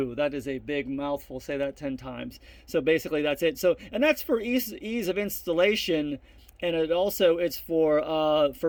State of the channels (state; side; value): identical; both; correlation 1.00